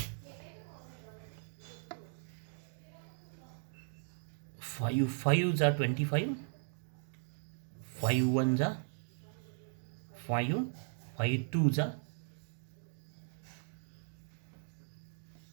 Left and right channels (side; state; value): left; silent; digital silence